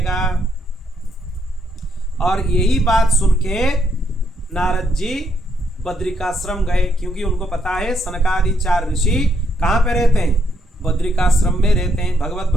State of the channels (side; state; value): both; normal; correlation 0.74